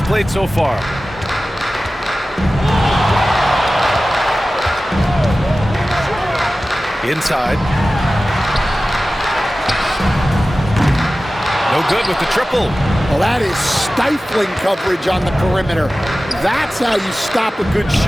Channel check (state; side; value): normal; both; correlation 0.96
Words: played so far. Inside. No good with the triple. Well, that is stifling coverage on the perimeter. That's how you stop a good